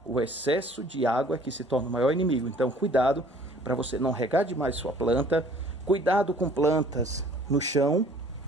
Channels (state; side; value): normal; both; correlation 0.54